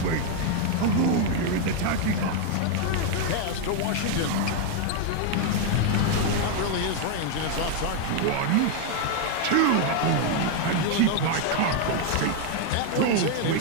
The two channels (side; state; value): both; different; correlation 0.00